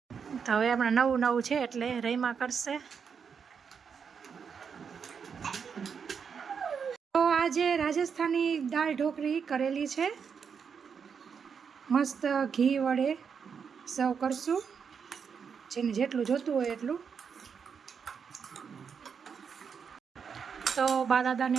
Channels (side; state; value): left; quieter; 6.5 dB